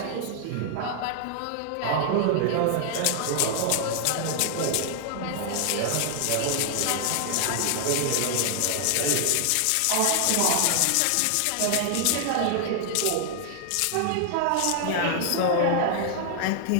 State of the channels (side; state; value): both; different; correlation 0.00